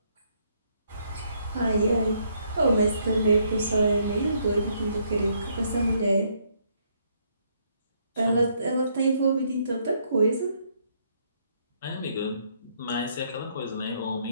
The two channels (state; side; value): inverted; both; correlation -0.71